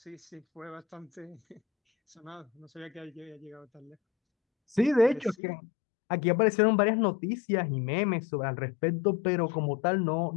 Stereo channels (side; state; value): right; drops out; at 5.4 s